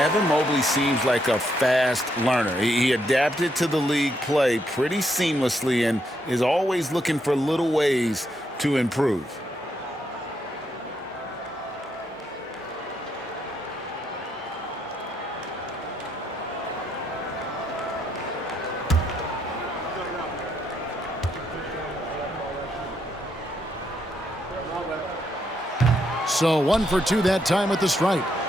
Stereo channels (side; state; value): both; normal; correlation 0.77